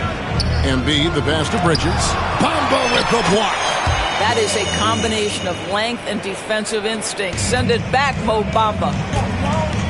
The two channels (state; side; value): identical; both; correlation 1.00